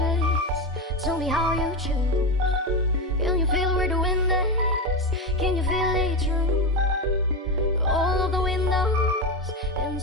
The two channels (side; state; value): both; normal; correlation 0.15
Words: Tell me how you choose. Can you feel where the wind is? Can you feel it through all of the windows